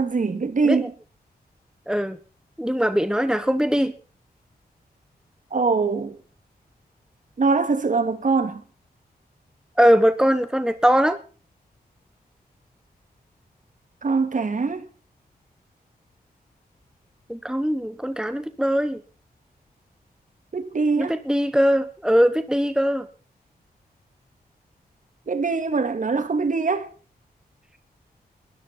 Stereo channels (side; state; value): both; normal; correlation 0.81